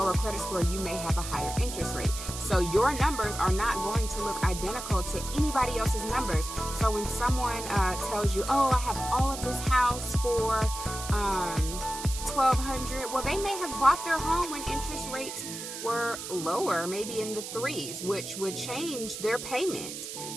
credit score, you may have a higher interest rate. So your numbers are not going to look identical to anybody else's numbers. So when someone tells you, oh, I have all of this house for $1,200, well, they may have bought their home when interest rates were lower, maybe in the 3s, which would change their payment.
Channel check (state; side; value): noise; right; hiss, 8 dB below the sound